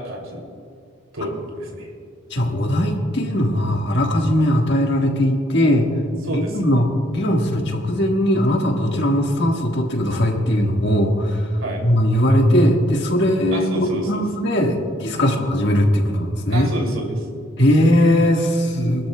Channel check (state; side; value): normal; both; correlation 0.70